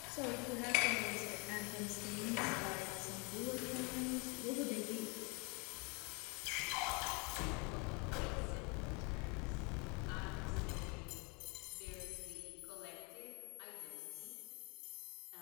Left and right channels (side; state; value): right; quieter; 30.8 dB